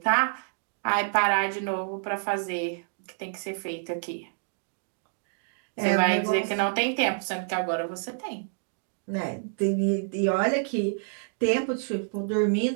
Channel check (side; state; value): left; silent; digital silence